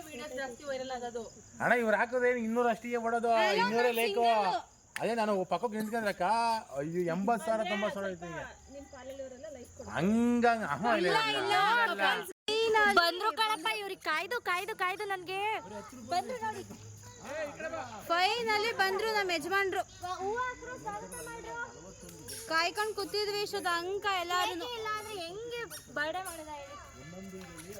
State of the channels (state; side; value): identical; both; correlation 1.00